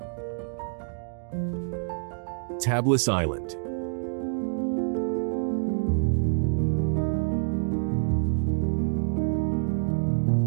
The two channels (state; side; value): silent; left; digital silence